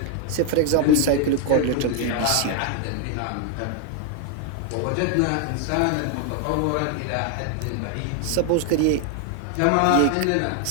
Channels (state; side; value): different; both; correlation 0.01